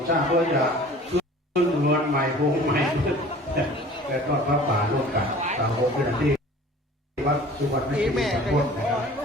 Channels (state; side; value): normal; both; correlation 0.46